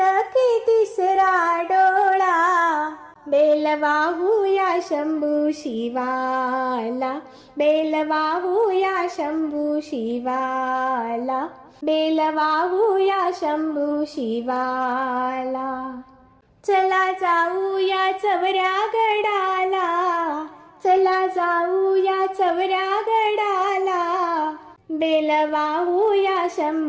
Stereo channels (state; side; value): identical; both; correlation 1.00